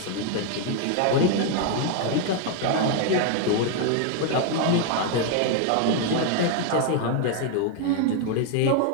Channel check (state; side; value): different; both; correlation 0.00